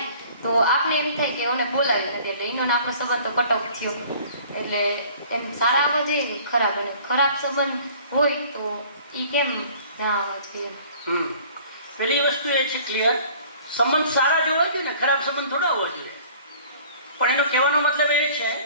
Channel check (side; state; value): both; inverted; correlation -0.50